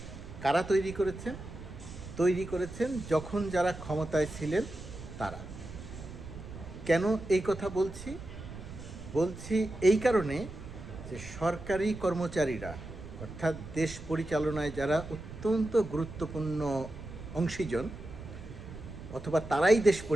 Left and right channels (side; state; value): right; noise; rumble, 12 dB below the sound